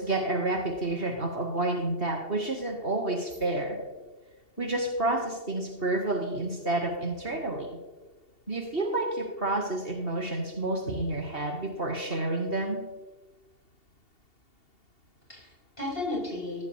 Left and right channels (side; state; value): right; late; 2.7 ms